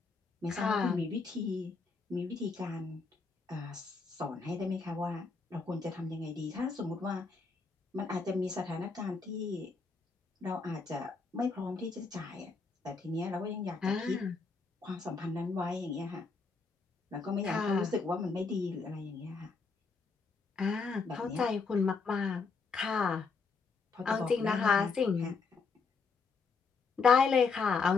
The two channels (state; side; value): quieter; right; 4.6 dB